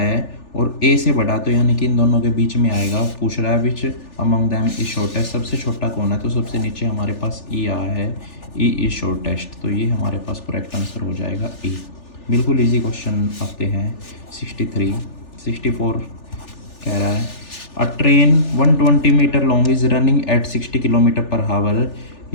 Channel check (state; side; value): late; right; 3.4 ms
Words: और A से बड़ा, तो यानी कि इन दोनों के बीच में आएगा। पूछ रहा है which among them is shortest, सबसे छोटा कौन है। तो सबसे नीचे हमारे पास E आया है, E इज शॉर्टेस्ट। तो ये हमारे पास करेक्ट आंसर हो जाएगा E। बिल्कुल इजी क्वेश्चन आते हैं। 63 64 कह रहा है, a train 120 metre long is running at 60 kilometre per hour.